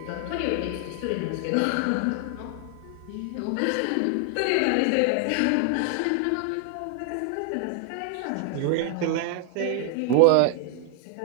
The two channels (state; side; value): different; both; correlation 0.00